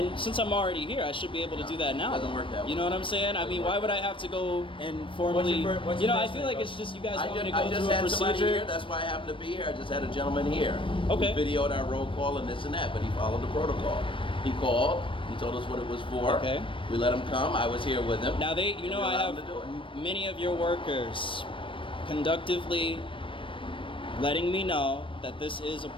since I'm already here, I should be able to do that now. Doesn't work that way. You know what I'm saying? I mean, why would I have to go and formally? what's You your know, I first feel name, like bud? it's just you guys I want me to just go had through a somebody procedure. here. That's why I happen to be here. I just had a gentleman here. Okay. We videoed our roll call and this and that, but he followed the protocol. He called. He told us what it was for. Okay. We let him come. I was here with him. Now you We know, I allowed have him to do it. many of your workers conductively letting me know that this is a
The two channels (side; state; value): right; late; 0.25 ms